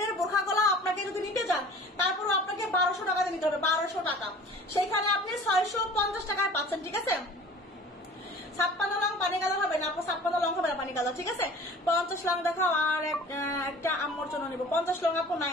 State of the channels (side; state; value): both; normal; correlation 0.45